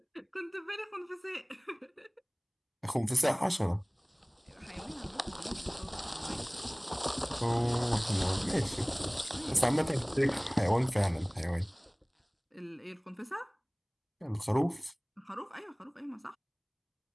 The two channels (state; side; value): identical; both; correlation 1.00